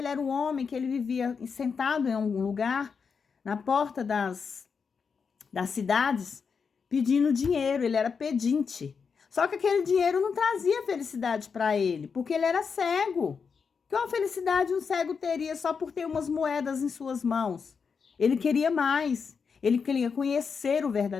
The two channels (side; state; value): right; quieter; 5.8 dB